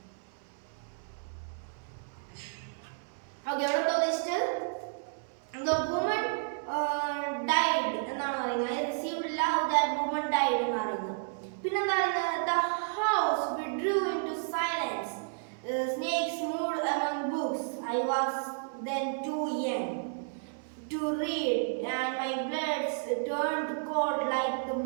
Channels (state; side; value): silent; left; 57 dB below the other